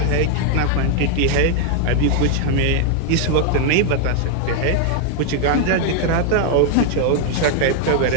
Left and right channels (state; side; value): different; both; correlation 0.00